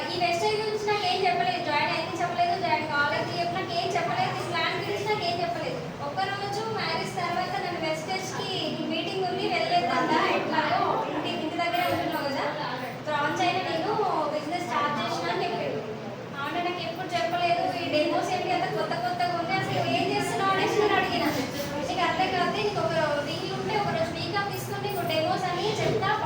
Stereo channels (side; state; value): both; identical; correlation 1.00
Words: ఈ వెస్టేజ్ గురించి నాకు ఏం చెప్పలేదు, జాయిన్ అయింది చెప్పలేదు, జాయిన్ కాలేజ్ చెప్పి నాకు ఏం చెప్పలేదు, ఈ ప్లాన్ గురించి నాకు ఏం చెప్పలేదు. ఒక్కరోజు మ్యారేజ్ తర్వాత నన్ను వెస్టేజ్కి మీటింగ్ ఉంది వెళ్ళలేదంట, ఎట్లాగో ఇంటి దగ్గరే ఉంటున్నావు